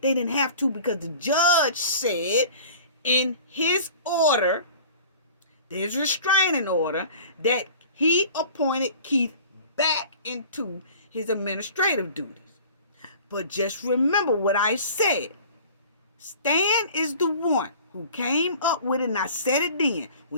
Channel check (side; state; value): both; inverted; correlation -0.44